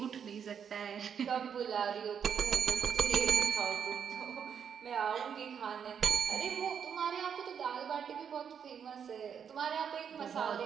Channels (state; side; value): quieter; left; 7.6 dB